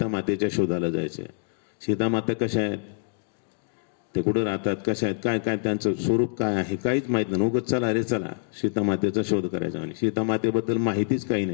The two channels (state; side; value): silent; right; digital silence